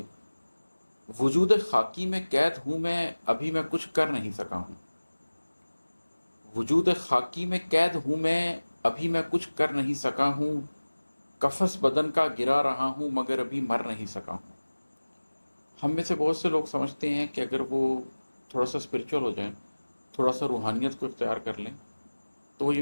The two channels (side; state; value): both; inverted; correlation -1.00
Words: وجود خاکی میں قید ہوں میں، ابھی میں کچھ کر نہیں سکا ہوں۔ وجود خاکی میں قید ہوں میں، ابھی میں کچھ کر نہیں سکا ہوں۔ قفس بدن کا گرا رہا ہوں مگر ابھی مر نہیں سکا ہوں۔ ہم میں سے بہت سے لوگ سمجھتے ہیں کہ اگر وہ تھوڑا سا اسپرچول ہو جائیں، تھوڑا سا روحانیت کو اختیار کر لیں، تو وہ